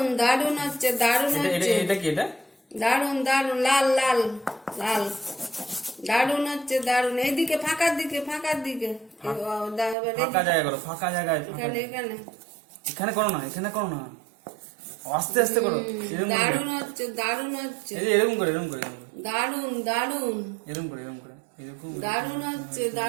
দারুন হচ্ছে, দারুন হচ্ছে, এটা কি? এটা দারুন দারুন, লাল লাল লাল, দারুন হচ্ছে দারুন। এইদিকে ফাঁকার দিকে, ফাঁকার দিকে, ফাঁকা জায়গা করো, ফাঁকা জায়গায়। এখানে এখানে এখানে করো না, এখানে করো না, আস্তে আস্তে করো। এরকম করে, দারুন হচ্ছে, দারুন হচ্ছে, এই যে এরকম করে, এরকম করে, এরকম করে, দারুন দারুন, এরকম করে, এরকম করে, এরকম। দারুন হচ্ছে,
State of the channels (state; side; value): drops out; left; at 10.0 s